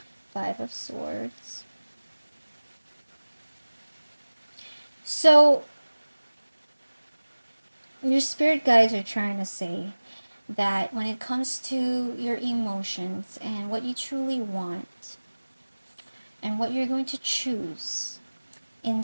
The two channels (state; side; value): inverted; both; correlation -1.00